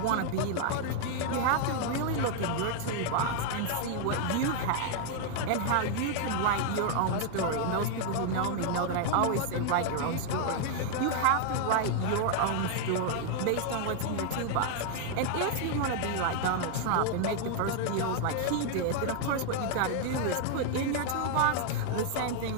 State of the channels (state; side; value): different; both; correlation 0.00